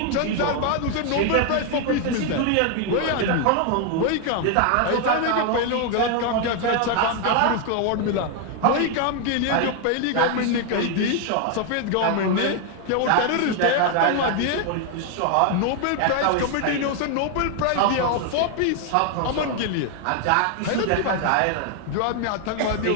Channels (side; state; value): both; different; correlation 0.01